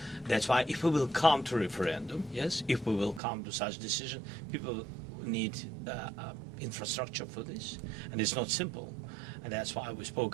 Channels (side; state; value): left; drops out; at 3.2 s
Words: That's why if we will come to referendum, yes, if we will come to such decision, people need infrastructure for this, and it's not simple. And that's why we